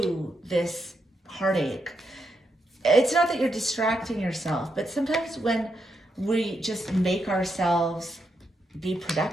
this heartache. It's not that you're distracting yourself, but sometimes when we just make ourselves be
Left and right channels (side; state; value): both; normal; correlation 0.82